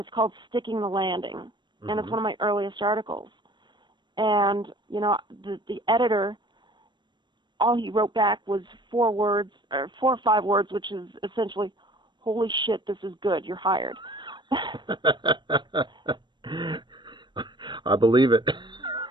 it's called Sticking the Landing. Mm-hmm. And it's one of my earliest articles. And, the editor, all he wrote back was 4 or 5 words, which is essentially, holy shit, this is good, you're hired. I believe it.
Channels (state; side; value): late; left; 0.22 ms